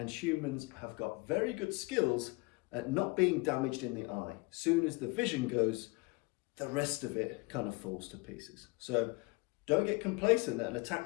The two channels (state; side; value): quieter; right; 26.8 dB